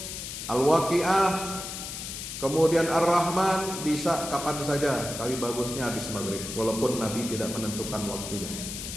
Al-Waqi'ah, kemudian Ar-Rahman bisa kapan saja, tapi bagusnya habis maghrib, walaupun Nabi tidak menentukan waktunya.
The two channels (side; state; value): left; noise; hiss, 7 dB below the sound